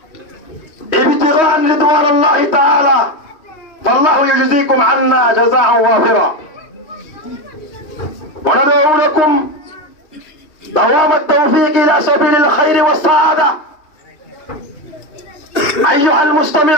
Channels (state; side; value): late; right; 3.2 ms